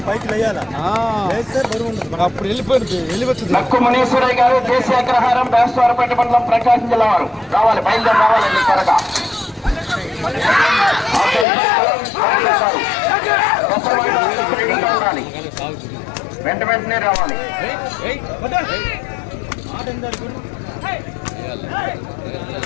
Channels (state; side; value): drops out; right; at 11.5 s